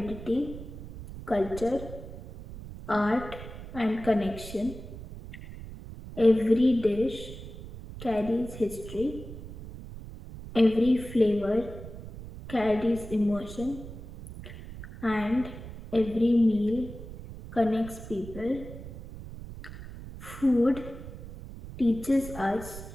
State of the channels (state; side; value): noise; right; rumble, 12 dB below the sound